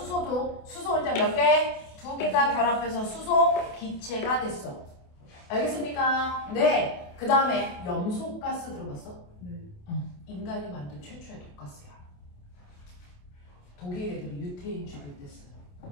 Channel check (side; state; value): right; late; 28 ms